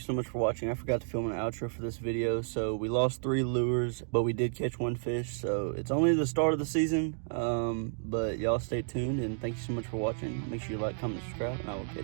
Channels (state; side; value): silent; left; digital silence